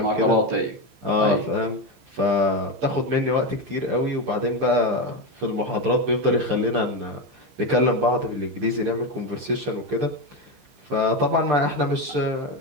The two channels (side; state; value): left; late; 15 ms